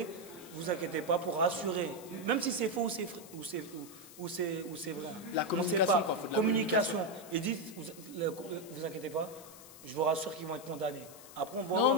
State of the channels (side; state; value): left; noise; hiss, 18 dB below the sound